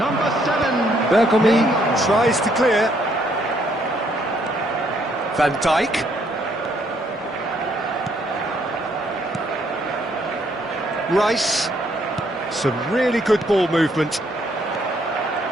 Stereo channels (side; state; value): both; normal; correlation 0.69